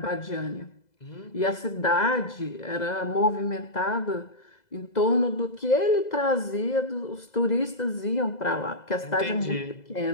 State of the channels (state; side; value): late; right; 2.0 ms